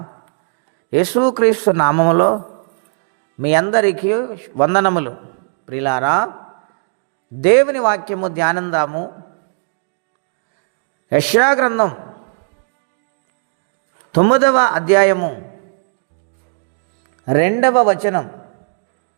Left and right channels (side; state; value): left; silent; digital silence